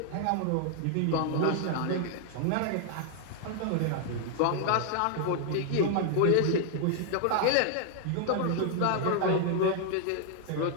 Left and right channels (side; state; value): both; different; correlation 0.00